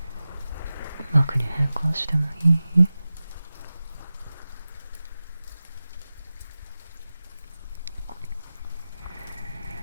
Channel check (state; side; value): inverted; both; correlation -0.95